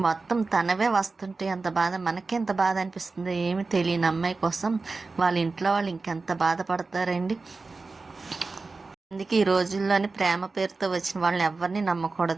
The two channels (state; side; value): quieter; left; 3.9 dB